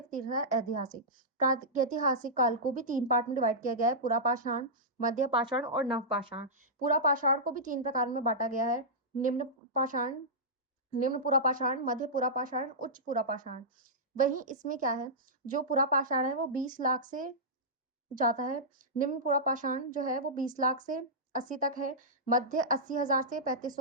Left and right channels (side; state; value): both; normal; correlation -0.13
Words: तीसरा है ऐतिहासिक। प्रागैतिहासिक काल को भी 3 पार्ट में डिवाइड किया गया है, पुरापाषाण, मध्य पाषाण और नवपाषाण। पुरापाषाण को भी 3 प्रकार में बाँटा गया है, निम्न पाषाण, निम्न पुरापाषाण, मध्य पुरापाषाण, उच्च पुरापाषाण। वहीं इसमें क्या है, जो पुरापाषाण है वो 20 लाख से जाता है। निम्न पुरापाषाण जो है वो 20 लाख से 80 तक है, मध्य 80,000 से